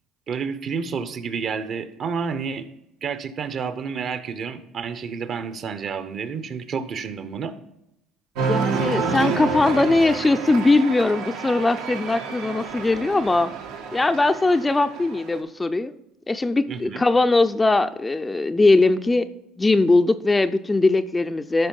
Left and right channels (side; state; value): both; normal; correlation 0.89